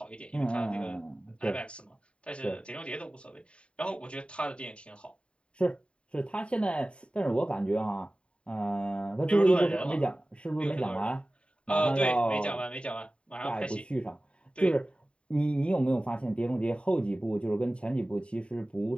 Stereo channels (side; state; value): right; late; 0.057 ms